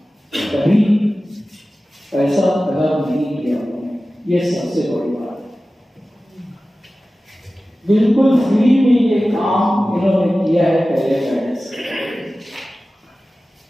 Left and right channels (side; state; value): both; normal; correlation 0.95